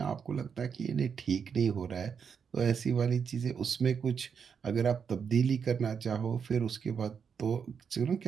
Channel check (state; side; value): quieter; left; 6.7 dB